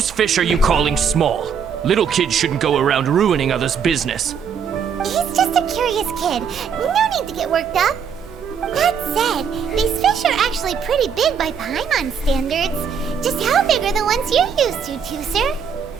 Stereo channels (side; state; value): left; quieter; 6.9 dB